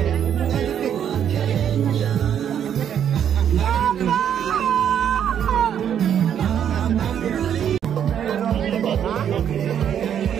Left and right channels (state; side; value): quieter; left; 9.1 dB